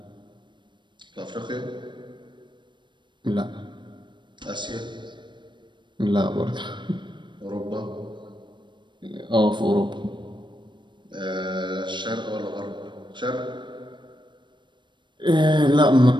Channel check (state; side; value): late; left; 0.22 ms